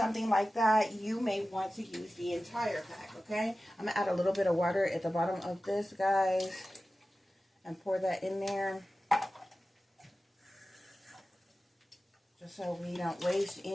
like that, you may want to use the entire pack, okay? I'm going to add a little bit of water at the bottom of this, guys, and pour that in there, just so we don't waste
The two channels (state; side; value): normal; both; correlation 0.95